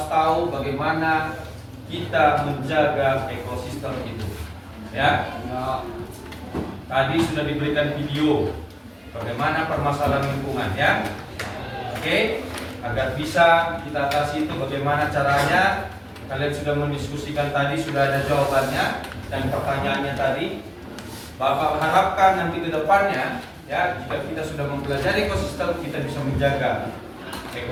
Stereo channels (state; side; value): identical; both; correlation 1.00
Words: tahu bagaimana kita menjaga ekosistem itu, ya. Tadi sudah diberikan video bagaimana permasalahan lingkungan, ya. Oke, agar bisa kita atasi itu bagaimana caranya. Kalian sudah mendiskusikan tadi, sudah ada jawabannya dan pertanyaannya tadi. Bapak harapkan nanti ke depannya, ya, jika kita sudah mempelajari ekosistem, kita bisa menjaga